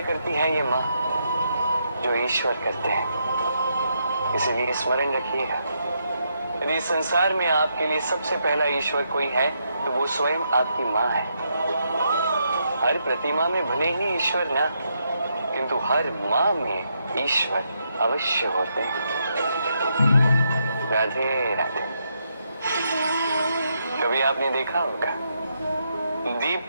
करती है ये माँ जो ईश्वर करते हैं। इसलिए स्मरण रखिएगा, यदि संसार में आपके लिए सबसे पहला ईश्वर कोई है तो वो स्वयं आपकी माँ है। हर प्रतिमा में भले ही ईश्वर ना, किंतु हर माँ में ईश्वर अवश्य होते हैं। राधे राधे। कभी आपने देखा होगा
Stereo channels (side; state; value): both; inverted; correlation -0.79